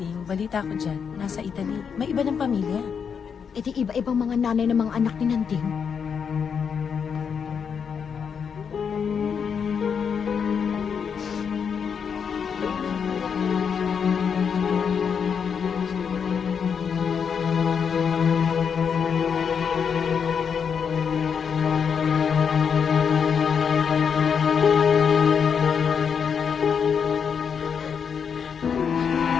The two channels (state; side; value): quieter; right; 6.8 dB